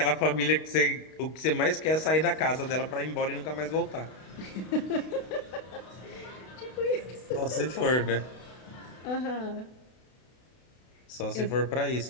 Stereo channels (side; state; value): right; late; 32 ms